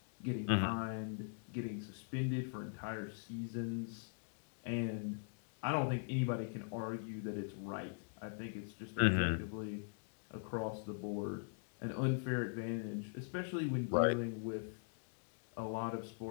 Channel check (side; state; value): right; silent; digital silence